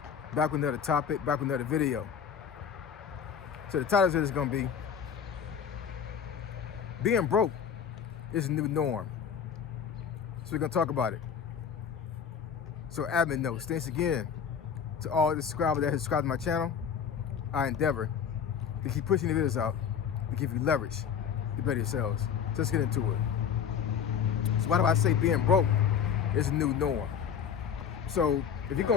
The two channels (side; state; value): right; quieter; 7.4 dB